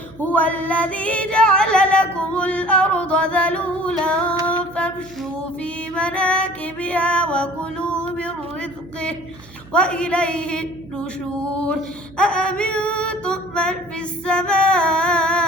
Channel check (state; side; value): noise; right; hum, 23 dB below the sound